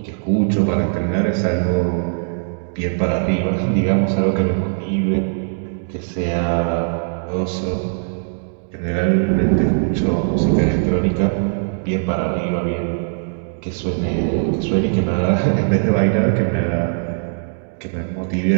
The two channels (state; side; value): silent; left; digital silence